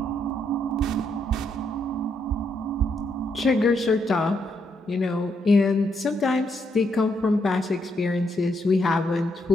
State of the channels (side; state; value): both; normal; correlation 0.77